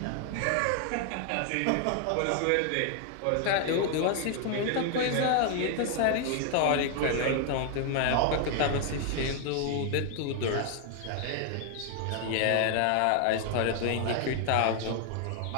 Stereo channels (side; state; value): both; different; correlation 0.00